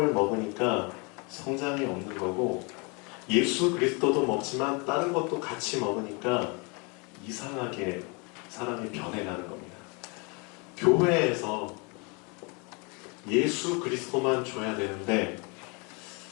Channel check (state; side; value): quieter; right; 31.4 dB